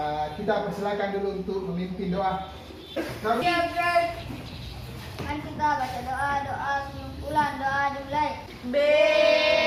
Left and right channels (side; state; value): both; identical; correlation 1.00